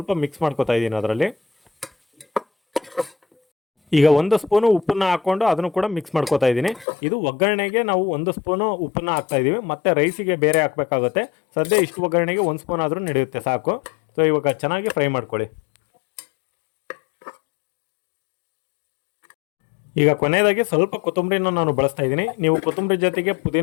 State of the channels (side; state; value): right; drops out; at 6.9 s